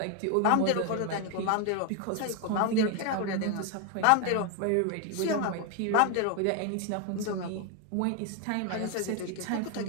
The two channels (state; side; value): different; both; correlation 0.01